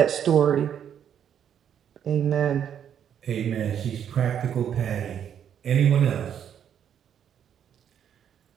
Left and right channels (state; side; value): quieter; left; 9.0 dB